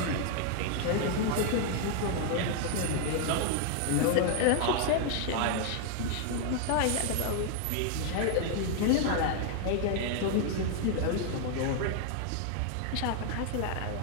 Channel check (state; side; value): different; both; correlation 0.00